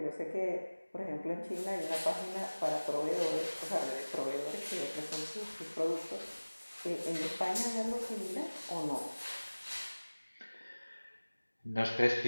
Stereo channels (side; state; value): both; inverted; correlation -1.00